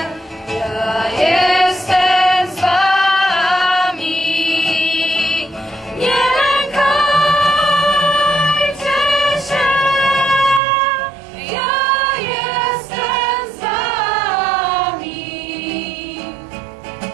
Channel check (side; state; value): left; drops out; at 10.6 s